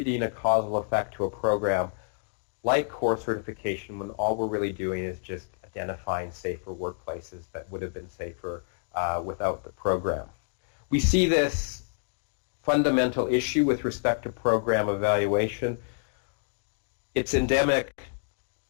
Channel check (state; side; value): silent; right; digital silence